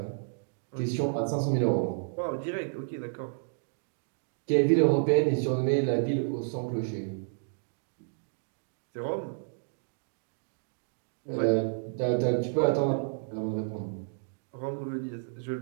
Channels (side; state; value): left; silent; digital silence